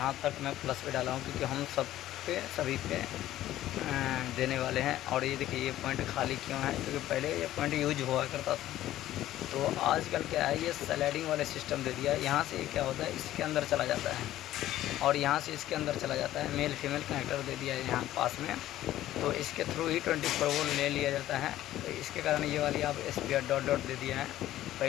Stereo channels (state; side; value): quieter; right; 13.9 dB